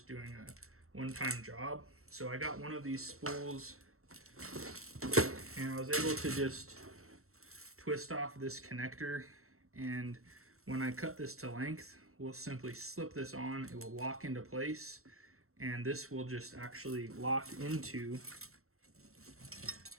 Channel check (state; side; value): late; left; 0.63 ms